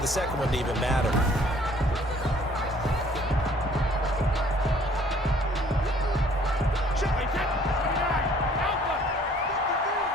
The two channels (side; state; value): both; normal; correlation 0.57